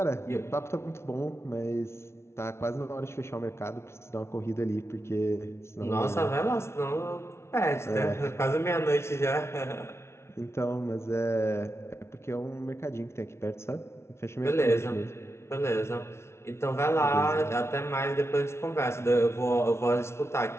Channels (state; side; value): late; right; 0.13 ms